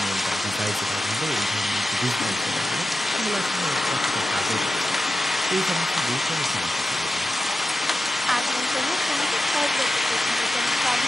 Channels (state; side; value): normal; both; correlation 0.92